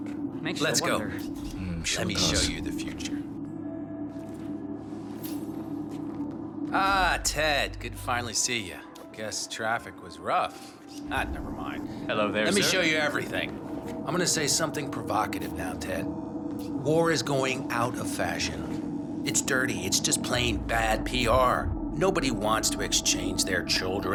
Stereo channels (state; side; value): identical; both; correlation 1.00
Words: makes you Let's go. wonder. Let me show you the future. Ah, Ted, good to finally see you. Guess traffic was rough. Ah, never mind. Hello there, Let me sir. show you everything. I'm gonna say something provocative now, Ted. War is going out of fashion. It's dirty, it's just plain bad PR. Nobody wants to exchange their